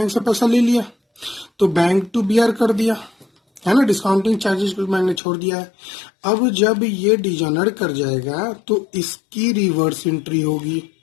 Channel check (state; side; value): drops out; right; at 5.2 s